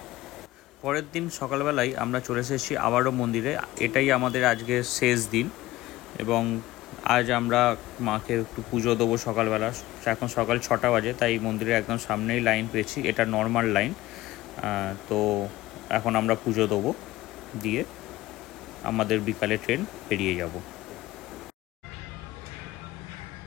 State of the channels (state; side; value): quieter; right; 17.4 dB